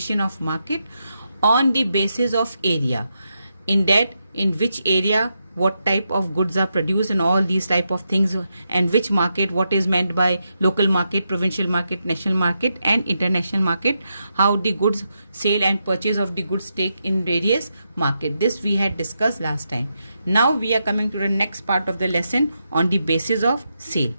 of market on the basis of area. In that, in which area what type of goods are produced and all these type of things, and which market, what is meant by local market, provincial market, national market and international market, how the goods sale and purchase of the goods take in various market. This we had discussed last time. Now we are coming to the next part of the lesson on the basis of sale.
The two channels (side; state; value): both; inverted; correlation -0.84